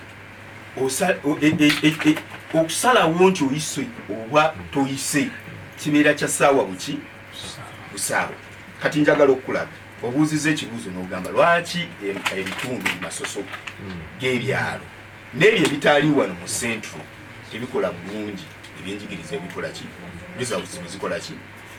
okusalawo nti oyise oba toyise kibeera kya ssaawa buki busaawa kati njagala okulaga obuuziza ekibuuzo n'ogamba lwaki ebitundu bimasoso g'ebyalo n'ebyo ebitaali wano mu centro tebikola bulungi ebyenjigiriza ebikola ki results bizikola ki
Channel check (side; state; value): both; identical; correlation 1.00